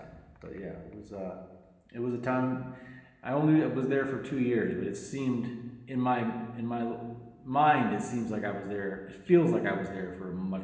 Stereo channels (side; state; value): both; identical; correlation 1.00